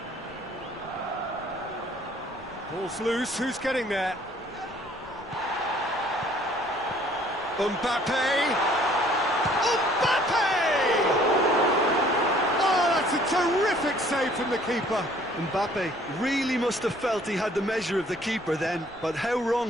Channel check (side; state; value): left; noise; rumble, 24 dB below the sound